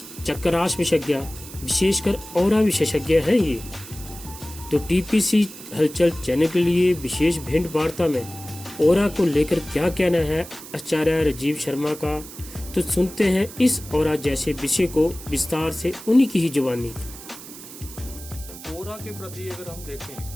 चक्रास विशेषज्ञ, विशेषकर ऑरा विशेषज्ञ हैं ये। तो टीपीसी हलचल चैनल के लिए विशेष भेंट वार्ता में ऑरा को लेकर क्या कहना है आचार्य राजीव शर्मा का, तो सुनते हैं इस ऑरा जैसे विषय को विस्तार से उन्हीं की ही जुबानी। ऑरा के प्रति अगर हम देखें,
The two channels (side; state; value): right; noise; hiss, 15 dB below the sound